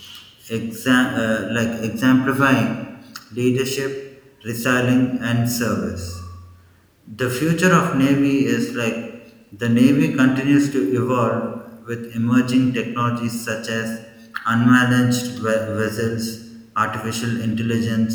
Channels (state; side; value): identical; both; correlation 1.00